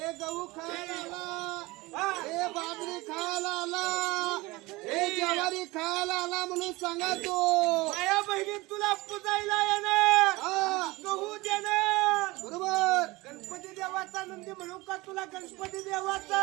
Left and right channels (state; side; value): quieter; left; 21.9 dB